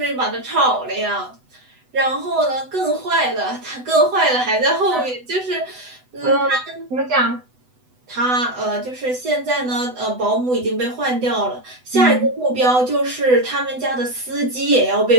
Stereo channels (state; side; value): late; left; 8.0 ms